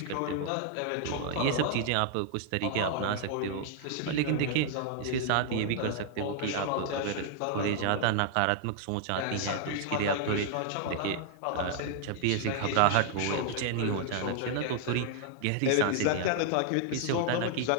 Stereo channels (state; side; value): different; both; correlation 0.00